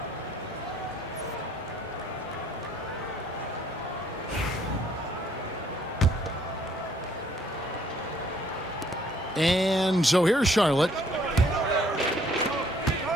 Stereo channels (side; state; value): both; normal; correlation 0.63